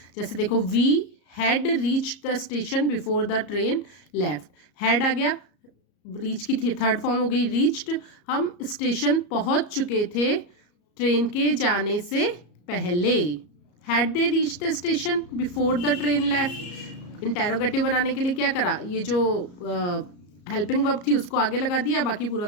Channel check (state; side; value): late; right; 34 ms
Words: जैसे देखो we had reached the station before the train left, had आ गया, रीच की थर्ड फॉर्म हो गई रीच्ड, हम स्टेशन पहुंच चुके थे ट्रेन के जाने से पहले। Had they reach the station before the train left, interrogative बनाने के लिए क्या करा, ये जो हेल्पिंग वर्ब थी उसको आगे लगा दिया, बाकी पूरा